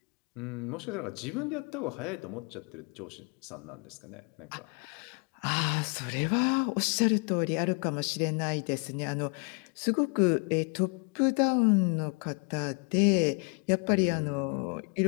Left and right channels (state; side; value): quieter; right; 36.5 dB